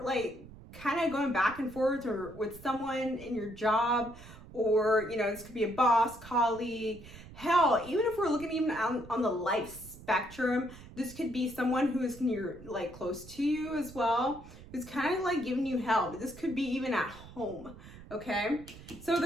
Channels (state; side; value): noise; right; rumble, 17 dB below the sound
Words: kind of going back and forth or with someone in your job or, you know, this could be a boss, colleague. Hell, even if we're looking even on the life spectrum, this could be someone who is near, like, close to you as well, who's kind of like giving you help. This could be even at home, okay? So